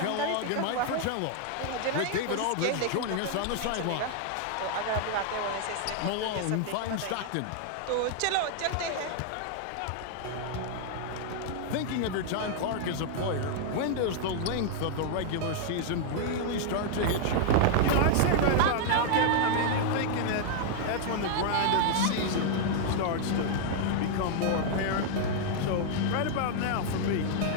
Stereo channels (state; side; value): different; both; correlation 0.00